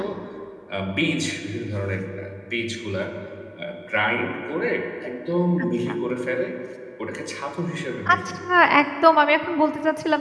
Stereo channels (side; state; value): both; identical; correlation 1.00